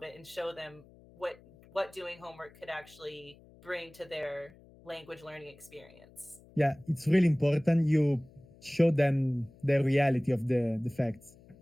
and show them what doing homework could actually bring to their language learning experience. Yeah, it's really important you show them the reality of the facts.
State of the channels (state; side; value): noise; left; hum, 25 dB below the sound